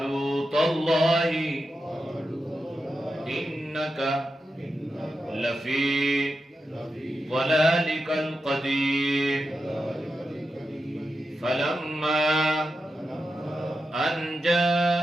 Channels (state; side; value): normal; both; correlation 0.89